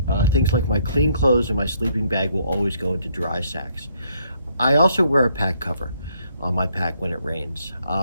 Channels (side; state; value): both; inverted; correlation -0.69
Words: Things like my clean clothes and my sleeping bag will always go into dry sacks. I also wear a pack cover on my pack when it rains.